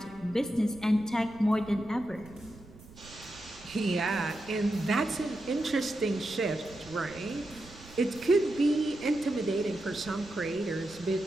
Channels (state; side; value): noise; right; rumble, 20 dB below the sound